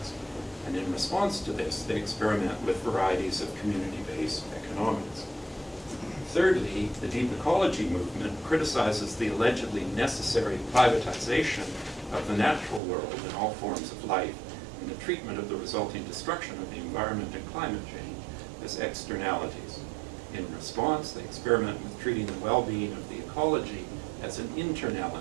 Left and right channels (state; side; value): drops out; left; at 12.8 s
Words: And in response to this, they experiment with varieties of community-based economics. Thirdly, the deep ecology movement criticizes the allegedly necessary privatization of the natural world and all forms of life and the treatment of the resulting destruction of the environment and climate change as externalities. In response, they experiment with treating the well-being of the ecology as an